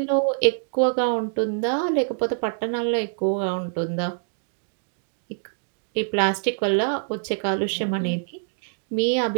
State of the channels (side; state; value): left; silent; digital silence